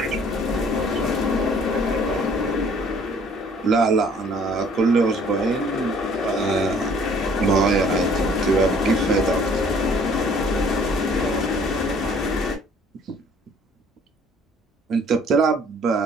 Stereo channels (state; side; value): normal; both; correlation 0.57